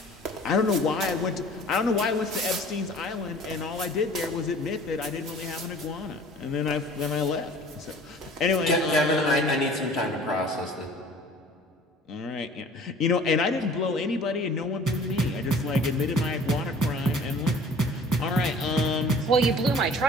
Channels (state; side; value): normal; both; correlation 0.48